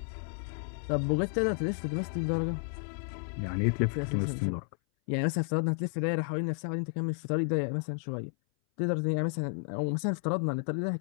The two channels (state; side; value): silent; right; 57 dB below the other